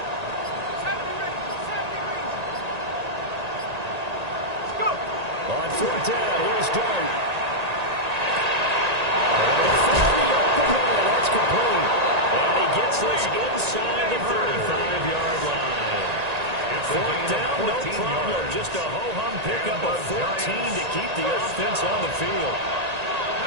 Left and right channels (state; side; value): late; left; 1.9 ms